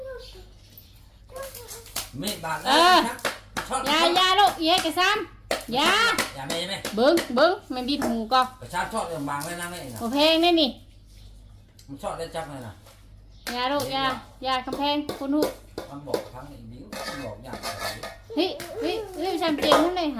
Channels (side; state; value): both; identical; correlation 1.00